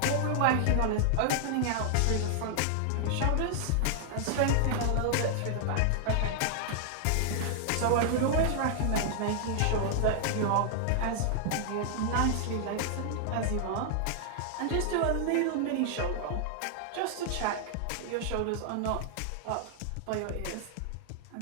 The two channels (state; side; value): different; both; correlation 0.00